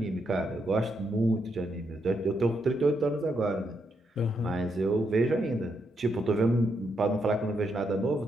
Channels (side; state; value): both; normal; correlation 0.80